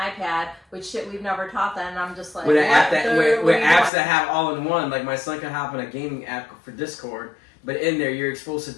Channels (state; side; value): drops out; right; at 3.9 s